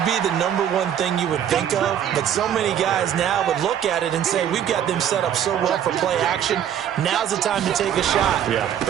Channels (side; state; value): left; quieter; 9.7 dB